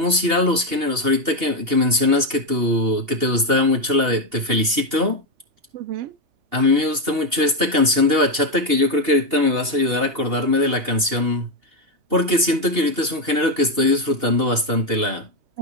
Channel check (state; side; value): late; left; 2.8 ms